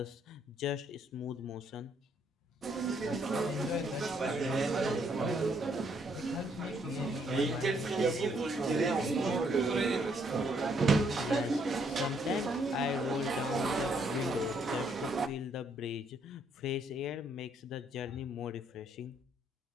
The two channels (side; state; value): both; normal; correlation 0.70